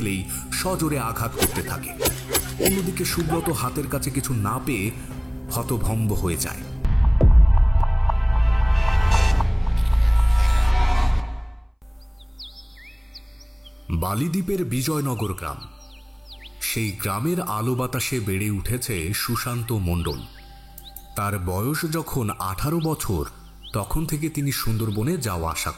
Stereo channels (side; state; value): both; identical; correlation 1.00